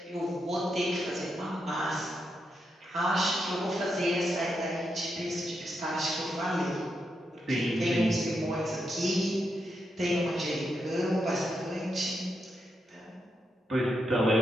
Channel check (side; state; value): both; normal; correlation 0.83